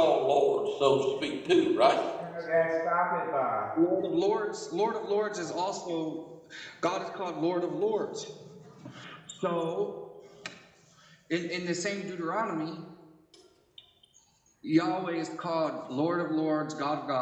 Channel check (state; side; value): identical; both; correlation 1.00